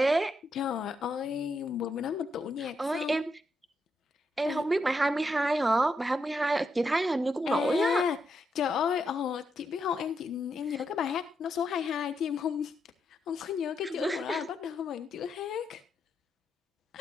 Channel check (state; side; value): normal; both; correlation 0.81